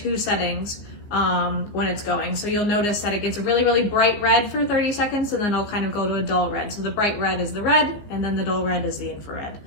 settings when it's going. So you'll notice that it gets a really, really bright red for 30 seconds, and then it'll kind of go to a dull red. So the bright red is the red, and then the dull red is the infrared.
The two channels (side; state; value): right; late; 15 ms